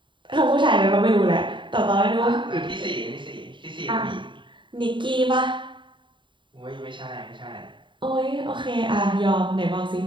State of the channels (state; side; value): late; left; 0.23 ms